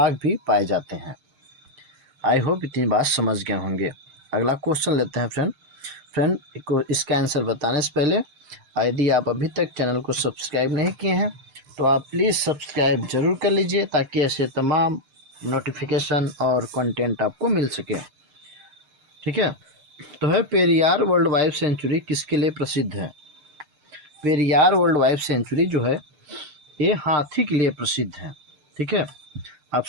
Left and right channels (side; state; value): left; late; 6.6 ms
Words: भी पाए जाते हैं। आई होप इतनी बात समझ गए होंगे। अगला क्वेश्चन लेते हैं फ्रेंड को इसका आंसर बताने से पहले यदि आप अभी तक चैनल को सब्सक्राइब नहीं किए हैं तो आप प्लीज़ सब्सक्राइब जरूर कर लीजिए ताकि ऐसे तमाम नोटिफिकेशन और कंटेंट आपको मिल सके। ठीक है, तो है पेरियार वर्ल्ड वाइल्ड सेंचुरी किसके लिए प्रसिद्ध है? पेरियार वर्ल्ड वाइल्ड सेंचुरी जो है ये हाथी के लिए प्रसिद्ध है। ठीक है,